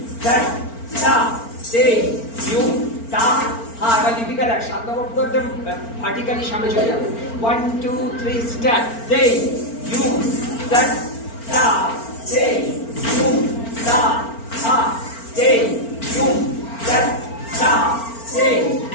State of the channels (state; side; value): late; right; 4.4 ms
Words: that ta te yum ta ha এবার দীপিকা দেখ 7 নম্বর পুরো একদম vertically সামনে চলে যাবে 1 2 3 start te yum that ta te yum ta ha te yum that ta te